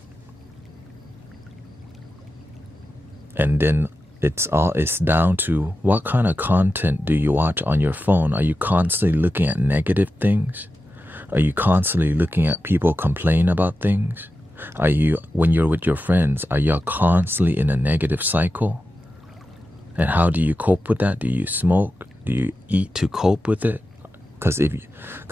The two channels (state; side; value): normal; both; correlation 0.91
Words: And then It's down to what kind of content do you watch on your phone. Are you constantly looking at negative things? Are you constantly looking at people complain about things? Are you, when you're with your friends, are you constantly in a negative cycle? And how do you cope with that? Do you smoke? Do you eat to cope with it?